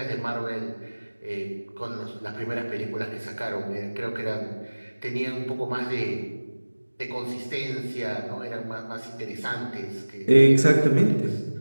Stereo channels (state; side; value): inverted; both; correlation -1.00